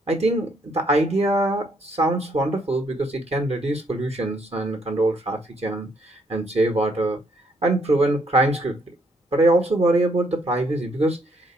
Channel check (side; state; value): both; normal; correlation 0.71